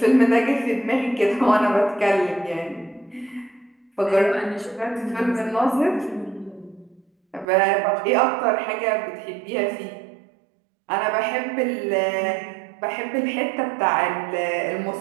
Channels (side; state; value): left; drops out; at 7.5 s